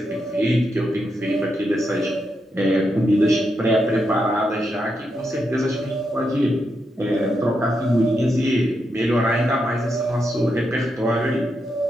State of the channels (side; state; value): both; normal; correlation 0.83